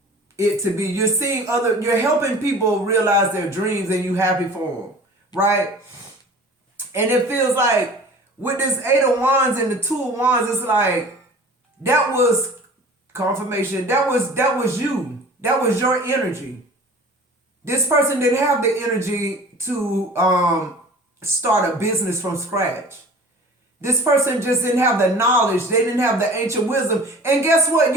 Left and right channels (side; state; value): both; normal; correlation 0.43